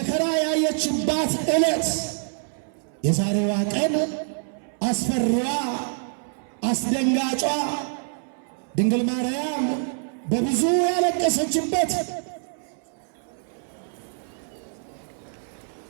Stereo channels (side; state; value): left; silent; 61 dB below the other